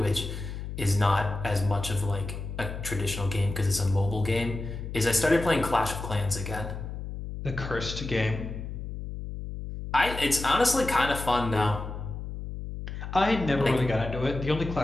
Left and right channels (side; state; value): left; noise; hum, 7 dB below the sound